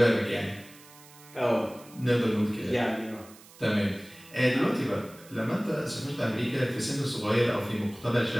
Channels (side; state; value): right; noise; hiss, 22 dB below the sound